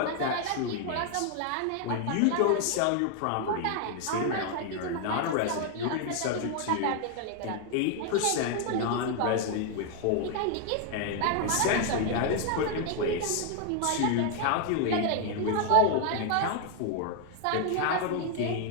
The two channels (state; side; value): different; both; correlation 0.00